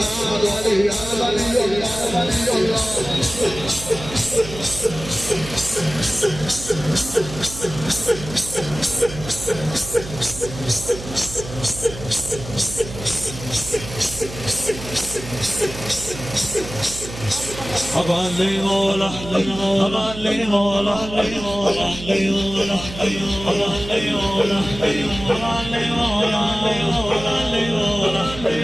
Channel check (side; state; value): right; noise; hum, 11 dB below the sound